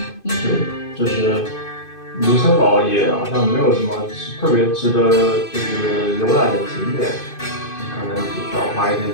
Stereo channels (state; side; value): late; right; 2.5 ms